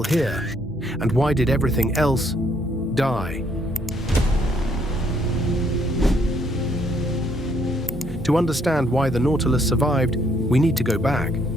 here? And why did everything else die? To understand why the Nautilus survived, we need to go back.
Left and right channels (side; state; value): both; normal; correlation 0.69